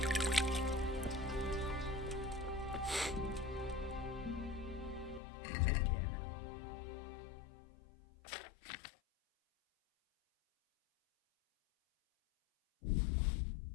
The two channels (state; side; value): drops out; right; at 5.2 s